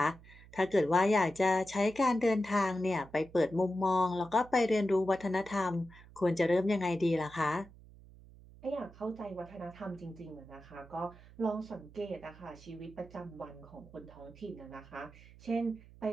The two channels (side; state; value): right; noise; hum, 21 dB below the sound